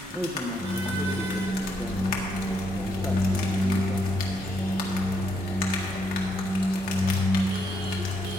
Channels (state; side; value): normal; both; correlation 0.76